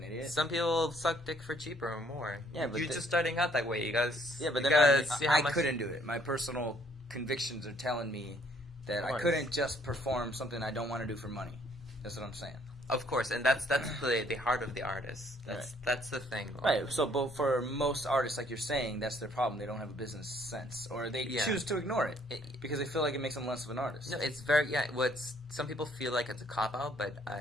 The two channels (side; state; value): both; normal; correlation 0.64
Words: idiot? Some people suck dick for cheaper or more. Yeah, but you're just starting out that way. You guys. Yeah, but you then gotta see how I much. couldn't do it. My personal convictions are telling me that Of I course. couldn't just perform something I don't want to do for money. That's what I'm saying. Of course, and that's the heart of the artist. That's the thing. Right. So, but for most artists, like you're saying, that's their problem. They don't have a business sense, or they choose to ignore it because they feel like it makes them less of an artist. No, it's very What's some people feel like it's a cop out, but